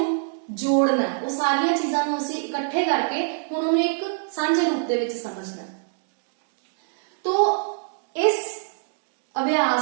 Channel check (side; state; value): left; silent; digital silence